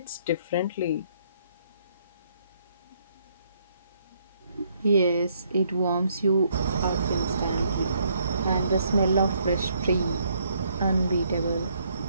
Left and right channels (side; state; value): both; inverted; correlation -0.71